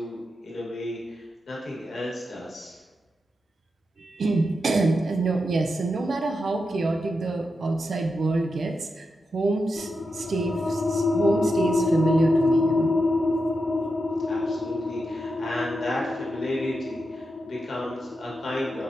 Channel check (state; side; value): normal; both; correlation 0.87